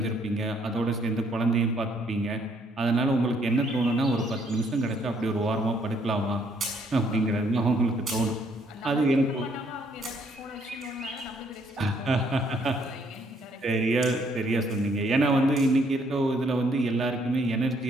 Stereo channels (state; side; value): normal; both; correlation 0.68